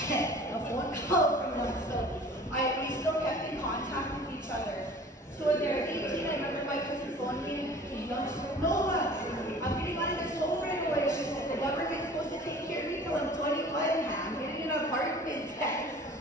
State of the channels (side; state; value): both; normal; correlation 0.45